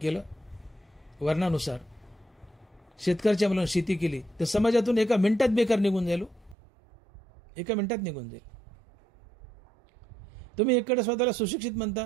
वर्णानुसार शेतकऱ्याच्या मुलांना शेती केली, तर समाजातून एका मिनिटात बेकार निघून जाईल. एका मिनिटात निघून जाईल. तुम्ही एकडे स्वतःला सुशिक्षित म्हणता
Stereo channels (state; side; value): drops out; left; at 6.6 s